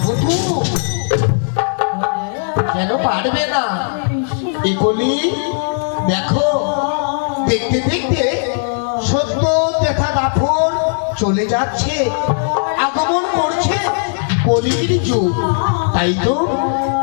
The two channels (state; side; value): silent; right; digital silence